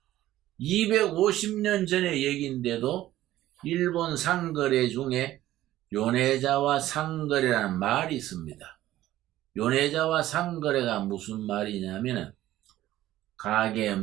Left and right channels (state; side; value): quieter; left; 14.4 dB